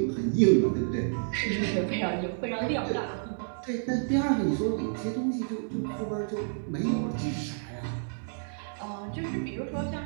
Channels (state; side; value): silent; left; 58 dB below the other